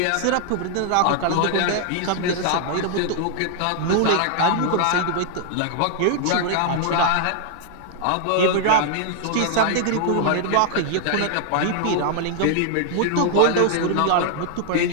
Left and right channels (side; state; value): both; different; correlation 0.00